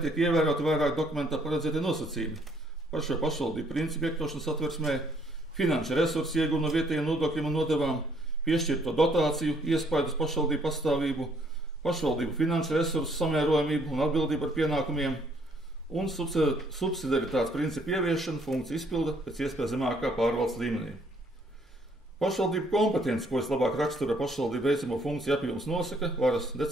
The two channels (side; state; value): both; normal; correlation 0.66